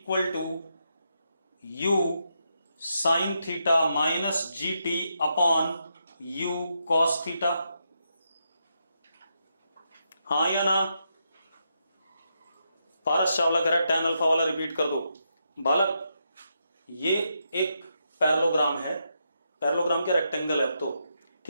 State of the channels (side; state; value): both; inverted; correlation -0.82